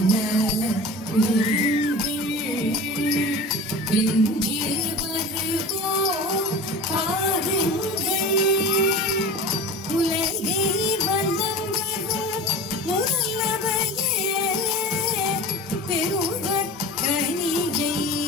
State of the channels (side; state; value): both; normal; correlation 0.34